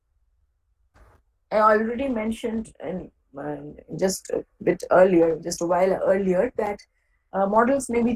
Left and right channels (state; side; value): identical; both; correlation 1.00